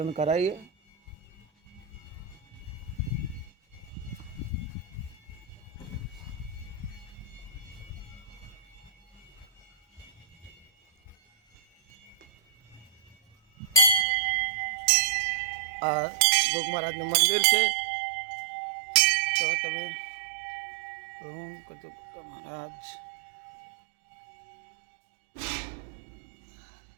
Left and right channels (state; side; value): drops out; left; at 14.1 s